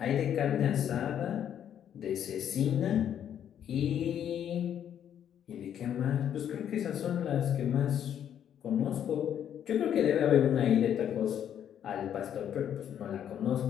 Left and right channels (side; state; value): right; quieter; 9.6 dB